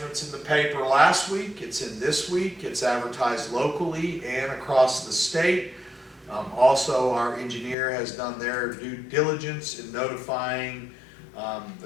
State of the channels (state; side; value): drops out; right; at 7.8 s